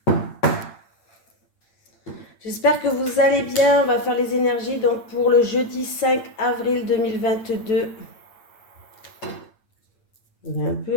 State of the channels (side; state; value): right; late; 8.8 ms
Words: J'espère que vous allez bien. On va faire les énergies donc pour le jeudi 5 avril 2022. Il est un